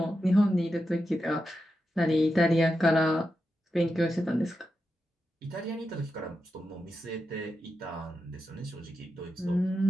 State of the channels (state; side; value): normal; both; correlation 0.88